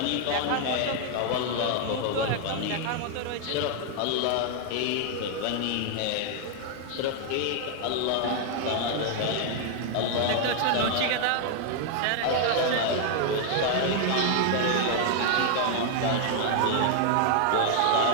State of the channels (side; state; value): both; different; correlation 0.00